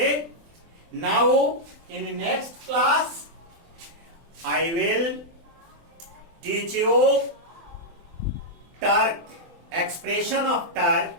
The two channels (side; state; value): left; late; 24 ms